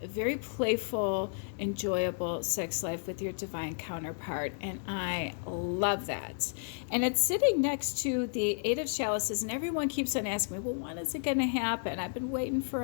a very playful, enjoyable sex life with your divine counterpart, and I love that. And it's sitting next to the Eight of Chalices, and everyone keeps on asking me, well, when is it going to happen? I've been waiting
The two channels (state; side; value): silent; right; digital silence